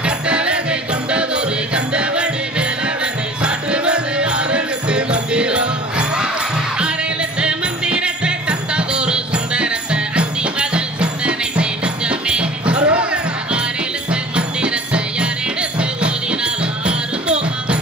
கட்டழகை கொண்டதொரு கந்தவடி வேலவனை சாற்றுவது ஆறெழுத்து மந்திரம். ஆறெழுத்து மந்திரத்தை தந்ததொரு சுந்தரத்தை அந்தி மகள் சிந்தனை செய்தமே. ஆறெழுத்து மந்திரத்தை யாரெடுத்து ஓதினாலும் ஆறு போகம்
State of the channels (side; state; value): both; normal; correlation 0.45